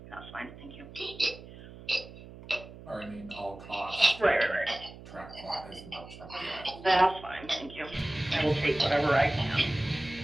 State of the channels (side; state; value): right; noise; hum, 16 dB below the sound